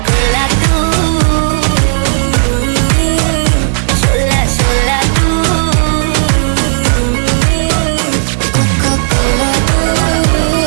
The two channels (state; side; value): silent; left; 71 dB below the other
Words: कोला तू, शोला शोला तू, कोका कोला तू,